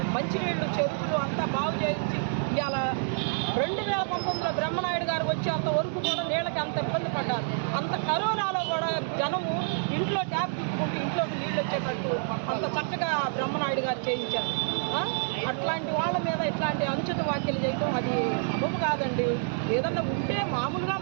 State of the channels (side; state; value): left; silent; digital silence